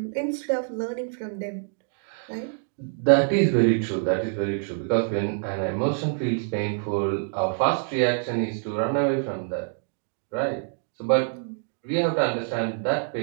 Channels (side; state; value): left; silent; digital silence